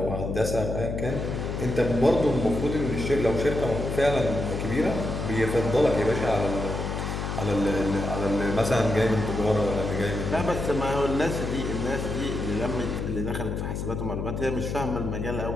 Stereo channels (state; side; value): noise; left; hum, 3 dB below the sound